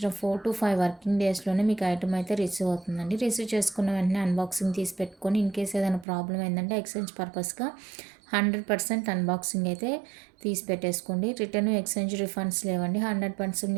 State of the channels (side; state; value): left; drops out; at 6.1 s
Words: 4 to 5 వర్కింగ్ డేస్లోనే మీకు ఐటమ్ అయితే రిసీవ్ అవుతుందండి. రిసీవ్ చేసుకున్న వెంటనే అన్బాక్సింగ్ తీసి పెట్టుకొని ఇన్ కేస్ ఏదైనా ప్రాబ్లం ఏంటంటే ఎక్స్చేంజ్ పర్పస్గా 100% అన్బాక్సింగ్ అయితే తీసి పెట్టేసుకోండి. రిటర్న్, ఎక్స్చేంజ్, రిఫండ్స్ లేవండి. 100%